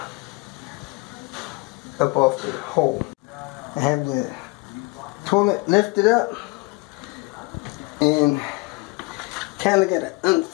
up off the hole. I have the toilet lifted up, and kind of got an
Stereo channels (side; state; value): right; quieter; 25.5 dB